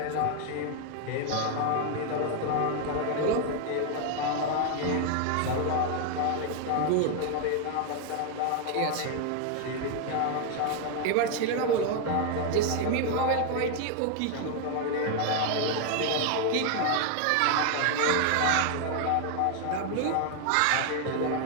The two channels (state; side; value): different; both; correlation 0.01